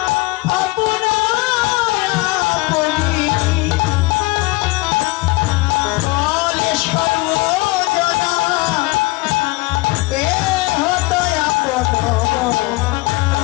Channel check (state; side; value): quieter; right; 23.2 dB